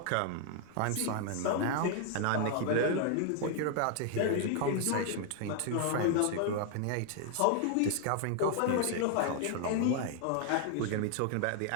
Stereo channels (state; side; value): different; both; correlation 0.00